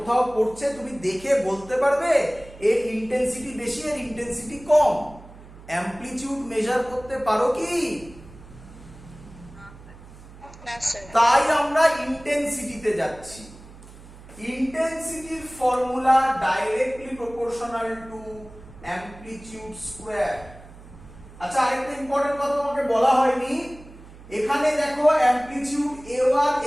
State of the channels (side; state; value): right; noise; hum, 19 dB below the sound